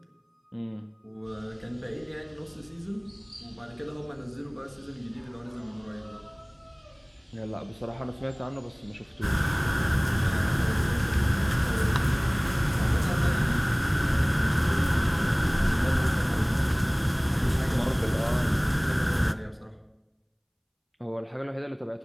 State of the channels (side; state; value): both; identical; correlation 1.00